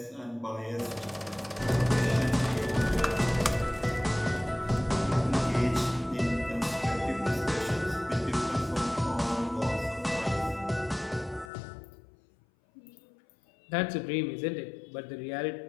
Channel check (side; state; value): right; drops out; at 11.5 s